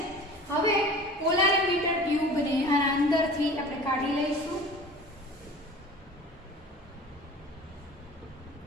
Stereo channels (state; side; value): normal; both; correlation 0.41